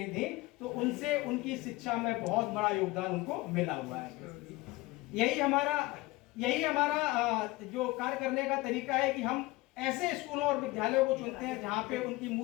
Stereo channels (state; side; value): quieter; right; 20.6 dB